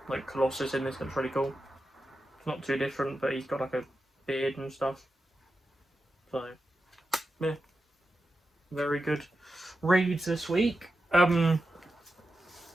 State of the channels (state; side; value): normal; both; correlation 0.90